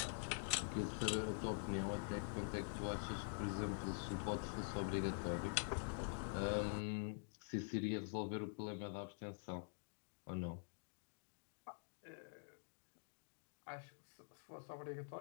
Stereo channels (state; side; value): silent; right; digital silence